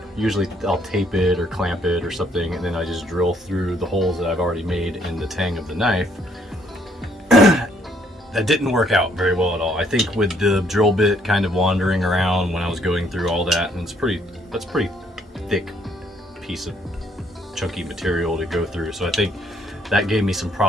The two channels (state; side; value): normal; both; correlation 0.68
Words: Usually I'll tape it or clamp it or something, and then I just drill through the holes that I've already made in the tang of the knife. That didn't work out very well at all. I think with the drill bit kind of wandering around when I was going through all that, and that's pretty thick piece of chunky material to go through. So I think that gave me some